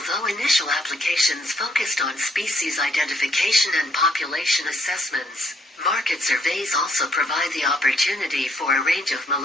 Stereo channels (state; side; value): normal; both; correlation 0.70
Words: initial applications focused on species identification and population assessments, market surveys also provide the opportunity for a range of